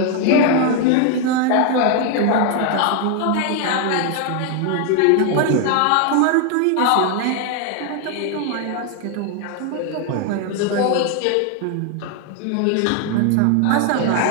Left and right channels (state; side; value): different; both; correlation 0.00